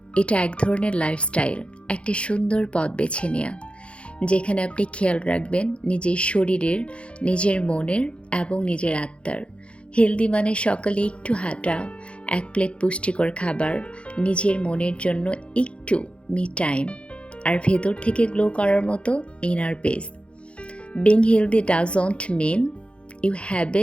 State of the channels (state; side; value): late; right; 0.059 ms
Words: এটা এক ধরনের লাইফস্টাইল, একটা সুন্দর পথ বেছে নেওয়া, যেখানে আপনি খেয়াল রাখবেন নিজের শরীরের, নিজের মনের এবং নিজের আত্মার। হেলদি মানে সকালে একটু হাঁটা, এক প্লেট পুষ্টিকর খাবার, নিজের মনের জন্য একটু মি টাইম, আর ভেতর থেকে গ্লো করার মতো inner peace. Being healthy doesn't mean you have